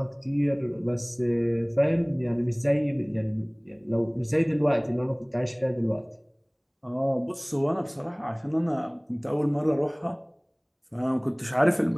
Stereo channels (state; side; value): identical; both; correlation 1.00